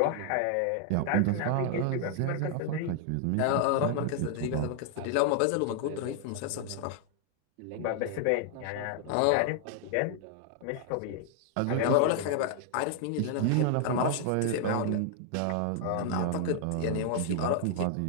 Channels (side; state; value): both; different; correlation 0.00